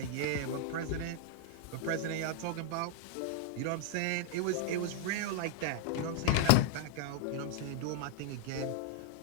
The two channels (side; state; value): both; different; correlation 0.00